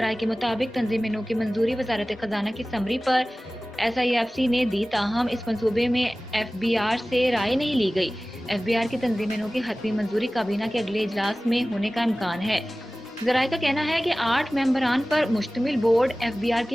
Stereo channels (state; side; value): normal; both; correlation 0.97